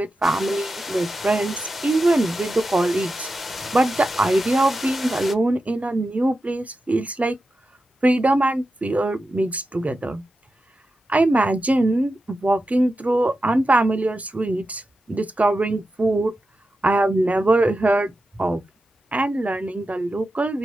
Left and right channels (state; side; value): normal; both; correlation 0.91